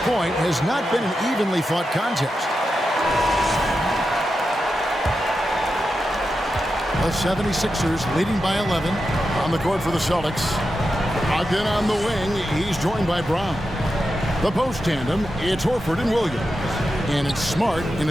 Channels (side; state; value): both; normal; correlation 0.89